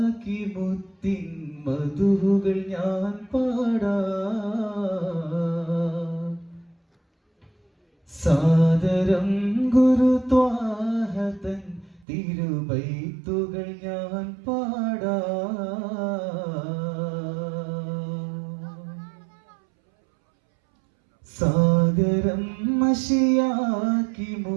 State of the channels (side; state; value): left; drops out; at 12.1 s